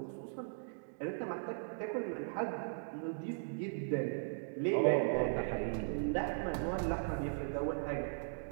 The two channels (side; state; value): left; silent; digital silence